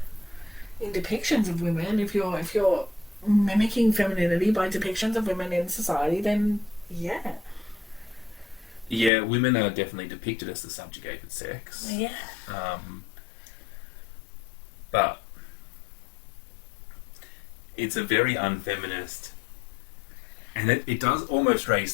in depictions of women, if you're mimicking femininity by depictions of women in society, then yeah. Yeah, women are definitely depicted as the subjugated sex. Yeah. But it's a very unfeminist, and it does almost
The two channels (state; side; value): drops out; right; at 9.1 s